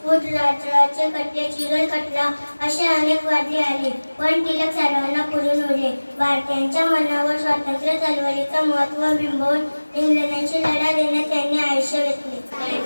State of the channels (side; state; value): both; inverted; correlation -1.00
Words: फूट राजचे खटले, चिरोल खटला असे अनेक वादळे आली. पण टिळक सर्वांना पुरून उरले. भारतीयांच्या मनावर स्वातंत्र्य चळवळीचं महत्त्व बिंबवून इंग्रजांशी लढा देण्यात त्यांनी आयुष्य घेतले.